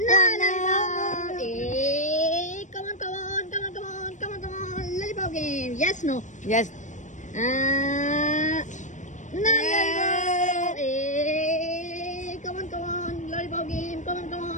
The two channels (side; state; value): right; late; 0.35 ms